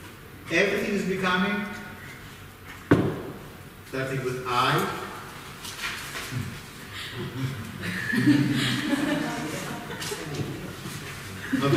Everything is becoming. Starting with I. Not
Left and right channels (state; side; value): identical; both; correlation 1.00